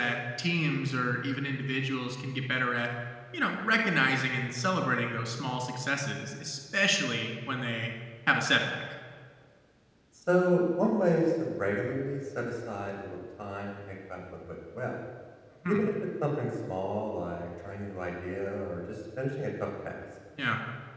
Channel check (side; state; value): both; identical; correlation 1.00